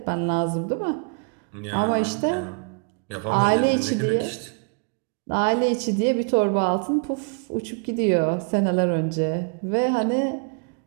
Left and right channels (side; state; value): left; quieter; 36.0 dB